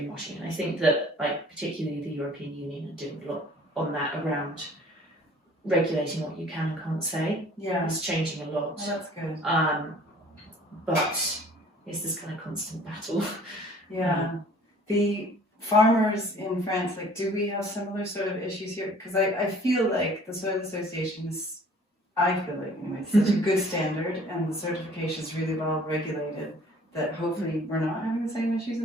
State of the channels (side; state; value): both; normal; correlation 0.53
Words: And I think that, like, particularly the European Union are doing a lot on that around regulating what you can and can't say. Yeah. It's changing a lot. Oh, that's good. But it's this kind of constant battle. Yeah. The farmers in France, like, do we have similar sort of issues here? Because I feel like the Soil Association is, I feel like, anyway, it's such a good standard and the certification is really well regulated that hopefully we're not having the same issues